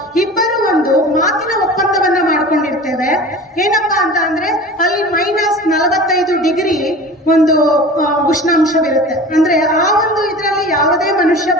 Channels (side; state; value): both; normal; correlation 0.37